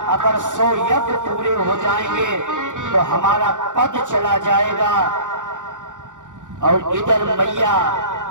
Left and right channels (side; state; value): left; late; 0.86 ms